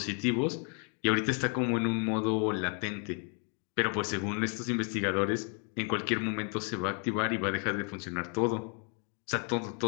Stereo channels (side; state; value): right; quieter; 39.7 dB